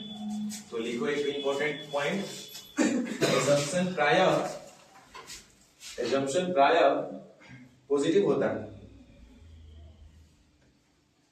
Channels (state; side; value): identical; both; correlation 1.00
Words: तो लिखो एक इंपॉर्टेंट पॉइंट, एजम्पशन प्राय पॉजिटिव होता है।